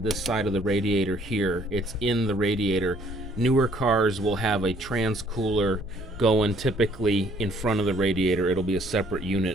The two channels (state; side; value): noise; right; hum, 20 dB below the sound